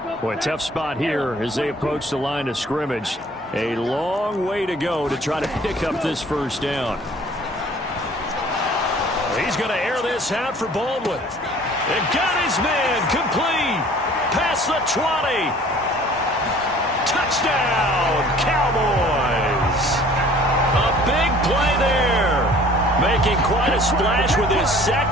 Boy, tough spot here as they approach the line of scrimmage. A long way to go to try to pick up this 1st down. He's going to air this out for Baldwin. And got his man complete. Past the 20. Touchdown, Cowboys. A big play there. Making quite a splash with his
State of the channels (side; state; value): both; normal; correlation 0.51